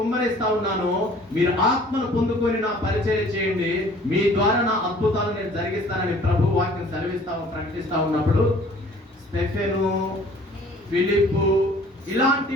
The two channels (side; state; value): both; normal; correlation 0.52